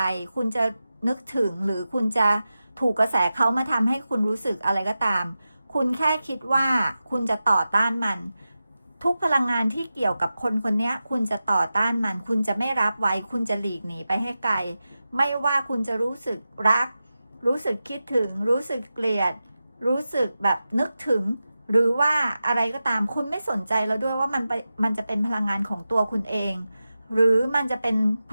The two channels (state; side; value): inverted; both; correlation -0.93